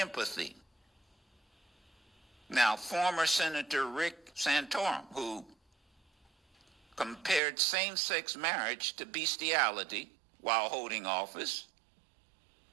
Now, former Senator Rick Santorum, who compared same-sex marriage to bestiality while holding office.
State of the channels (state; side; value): drops out; left; at 7.4 s